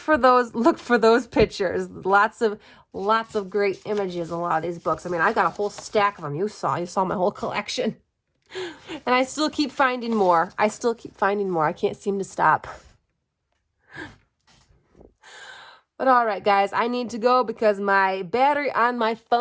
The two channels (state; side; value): identical; both; correlation 1.00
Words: those pictures. Lots of great images in a lot of these books. I mean, I got a whole stack of them. You saw my whole collection. And I still keep finding more. I can't seem to stop. But all right, guys, I need to go because my battery on my